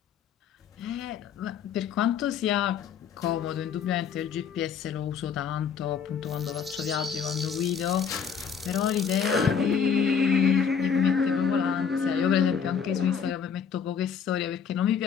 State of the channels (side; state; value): right; quieter; 6.9 dB